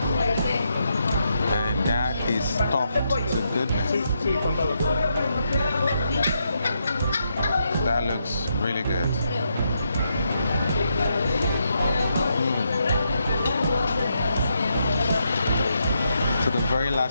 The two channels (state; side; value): inverted; both; correlation -0.80